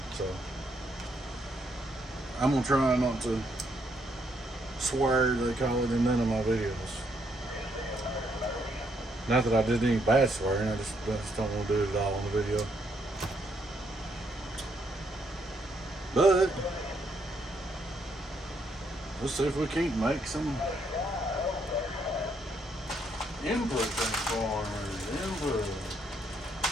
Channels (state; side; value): normal; both; correlation 0.74